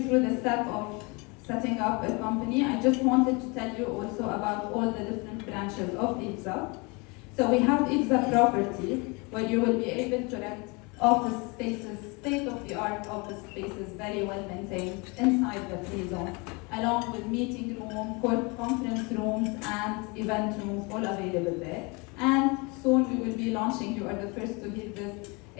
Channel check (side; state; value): right; quieter; 28.8 dB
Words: through the step of setting up a company. I just wanted to tell you also about all the different branches of IBSA. So we have IBSA Property, where you will be able to rent office spaces, state-of-the-art office spaces, very well maintained inside the free zone, along with meeting room, conference rooms, and event rooms, all available there. And soon we will be launching, you are the first to hear this,